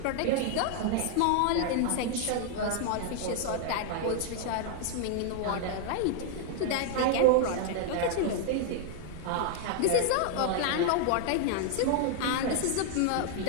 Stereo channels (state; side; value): different; both; correlation 0.00